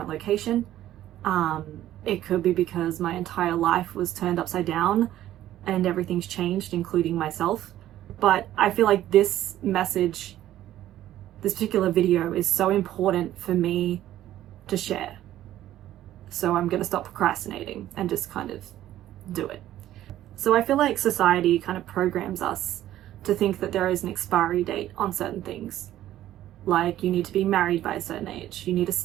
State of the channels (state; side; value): quieter; left; 13.2 dB